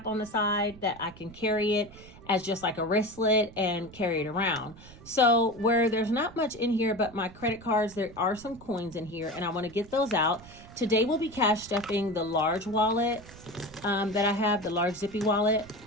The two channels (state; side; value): noise; right; rumble, 19 dB below the sound